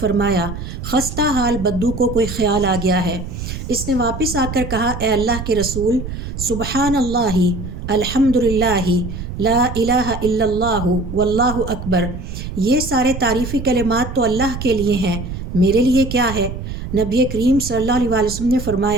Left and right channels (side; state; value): right; noise; rumble, 7 dB below the sound